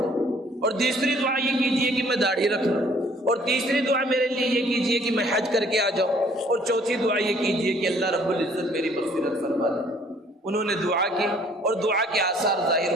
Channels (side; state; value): both; normal; correlation 0.59